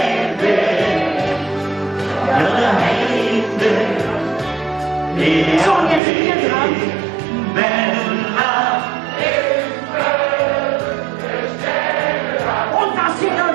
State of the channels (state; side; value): drops out; left; at 6.0 s